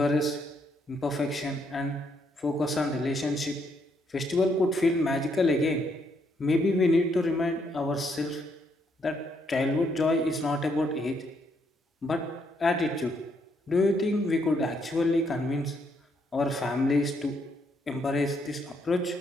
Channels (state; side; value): normal; both; correlation 0.74